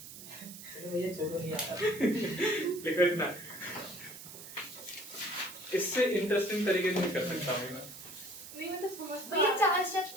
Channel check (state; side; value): noise; right; hiss, 14 dB below the sound